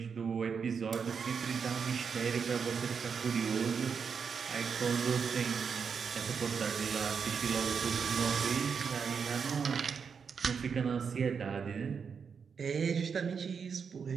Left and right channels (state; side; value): quieter; left; 6.2 dB